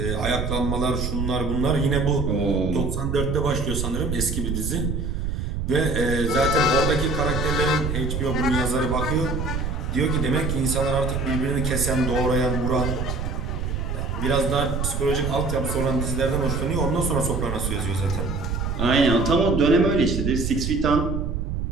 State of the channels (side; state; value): right; noise; rumble, 2 dB below the sound